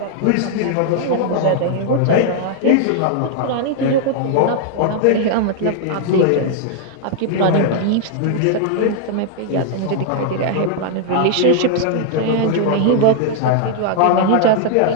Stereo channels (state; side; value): different; both; correlation 0.00